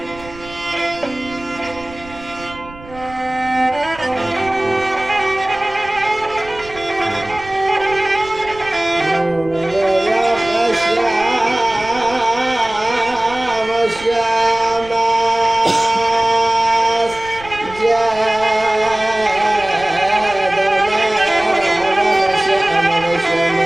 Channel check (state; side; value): noise; right; rumble, 19 dB below the sound